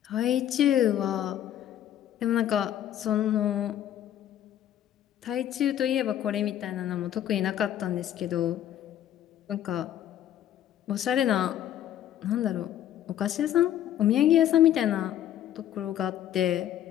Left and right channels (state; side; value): quieter; right; 11.3 dB